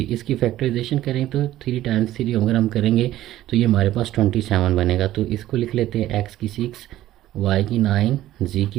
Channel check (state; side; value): quieter; left; 14.2 dB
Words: इसकी फैक्टराइजेशन करें तो 3 टाइम्स 3 अगर हम करेंगे तो ये हमारे पास 27 बनेगा। तो इसको लिख लेते हैं, x की 6, y की 9, z